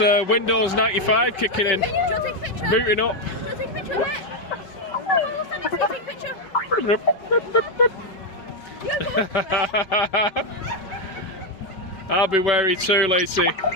Windows 95 kicking in. Booting up. I'll be wary too, Lacey.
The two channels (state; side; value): late; right; 5.2 ms